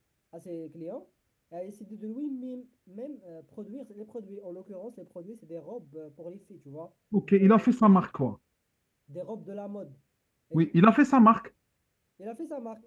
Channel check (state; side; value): identical; both; correlation 1.00